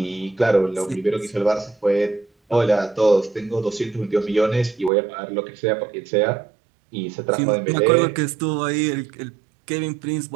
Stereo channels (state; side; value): drops out; left; at 4.9 s